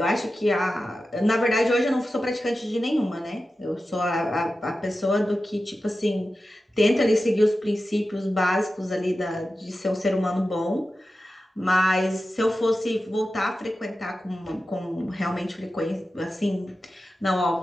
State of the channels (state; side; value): normal; both; correlation 0.93